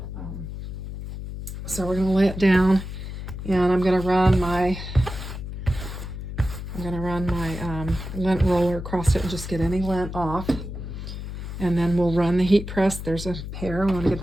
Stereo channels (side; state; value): left; noise; hum, 8 dB below the sound